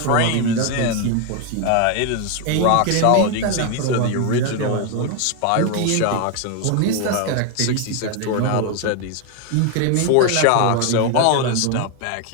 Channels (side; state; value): both; different; correlation 0.01